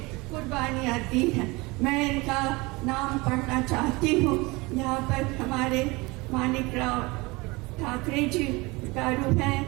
कुर्बानियाँ दी हैं। मैं इनका नाम पढ़ना चाहती हूँ। यहाँ पर हमारे मानिकराव ठाकरे जी गारू हैं,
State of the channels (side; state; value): left; quieter; 24.1 dB